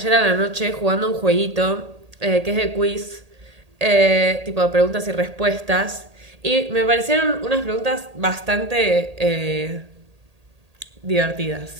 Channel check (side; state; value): left; late; 1.8 ms